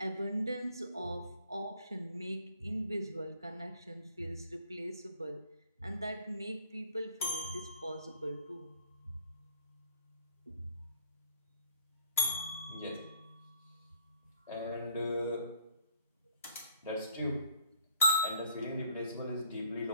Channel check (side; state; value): both; inverted; correlation -0.59